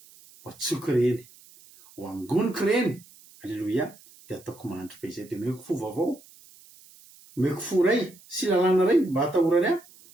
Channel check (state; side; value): noise; right; hiss, 24 dB below the sound